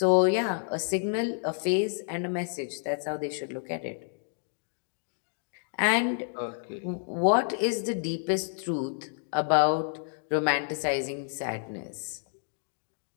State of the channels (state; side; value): silent; right; digital silence